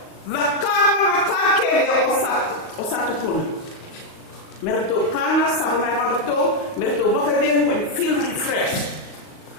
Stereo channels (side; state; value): right; late; 38 ms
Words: Vakama matake ya osatu puni. Merito kana sabona merito bakadeng when feel refreshed.